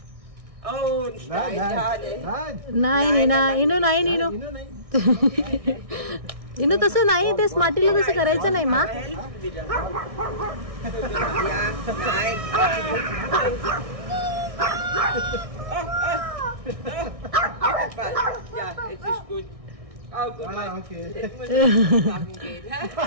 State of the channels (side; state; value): left; late; 1.6 ms